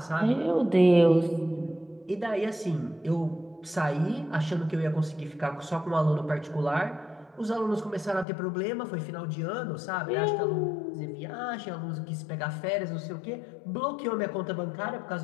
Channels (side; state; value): right; drops out; at 8.2 s